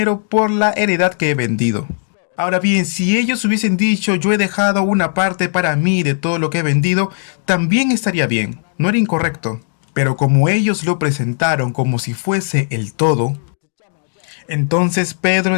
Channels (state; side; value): silent; right; digital silence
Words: por la heredad que he vendido. Ahora bien, si ellos hubiesen dicho, yo he dejado una parte para mí de todo lo que he vendido, también estaría bien, no era incorrecto. Pero como ellos lo presentaron como si fuese el todo, entonces Pedro